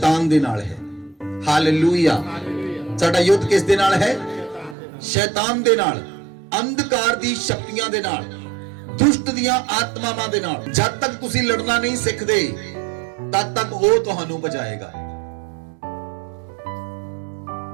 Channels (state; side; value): drops out; left; at 4.8 s